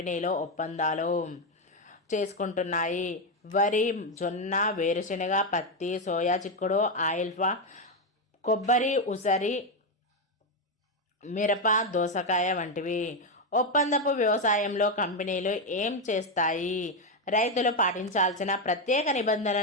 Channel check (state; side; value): normal; both; correlation 0.07